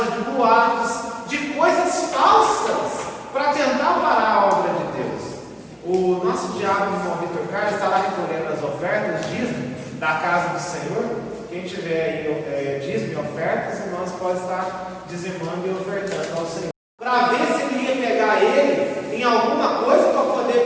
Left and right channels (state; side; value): identical; both; correlation 1.00